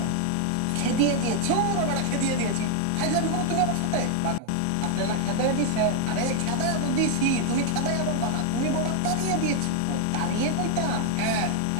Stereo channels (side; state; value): both; different; correlation 0.00